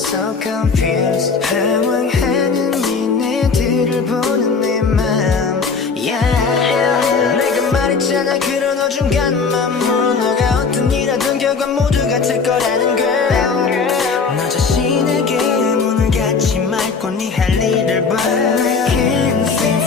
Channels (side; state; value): right; quieter; 5.0 dB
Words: so confused. 방황하는 니네들을 보는 내 맘, yeah. 내가 말했잖아 그런 어중간한 맘으로 너가 어떤 일 하든 결과 모두 같을 거라는 걸. 너 자신에게 문을 닫지 말고 네 할 일을 봐. I can't seem to